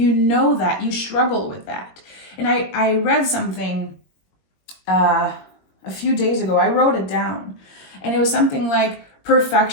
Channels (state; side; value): late; right; 22 ms